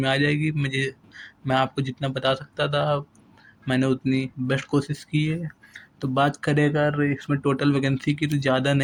आ जाएगी। मैं आपको जितना बता सकता था मैंने उतनी बेस्ट कोशिश की है। तो बात करें अगर इसमें टोटल वैकेंसी की तो ज़्यादा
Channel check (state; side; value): identical; both; correlation 1.00